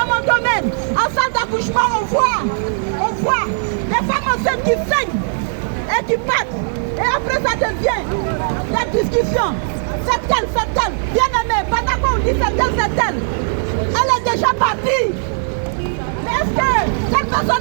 mon domaine, en salle d'accouchement, on voit des femmes enceintes qui saignent et qui partent. Et après ça devient la discussion. C'est elle. Bien-aimé, pendant qu'on dit c'est elle, elle est déjà partie. Mais est-ce que cette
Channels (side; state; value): left; silent; digital silence